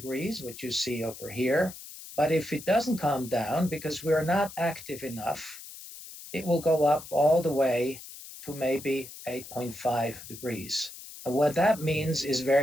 which you see over here. But if it doesn't calm down, because we're not active enough, it will go up all the way to maybe 8.5 degrees. And what that means is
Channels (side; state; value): left; noise; hiss, 14 dB below the sound